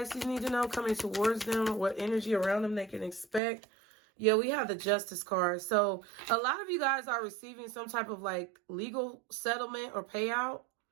need to know coming towards them? What energy around them they can expect? Yeah, we have the Justice card. So a lot of you guys are receiving some type of like legal settlement or payout.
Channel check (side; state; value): left; drops out; at 3.4 s